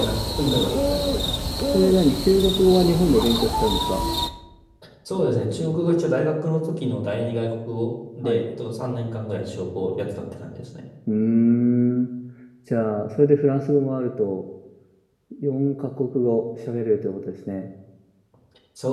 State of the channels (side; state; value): both; identical; correlation 1.00